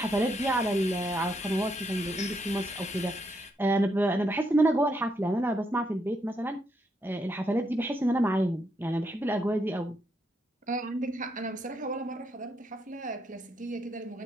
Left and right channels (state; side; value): normal; both; correlation 0.78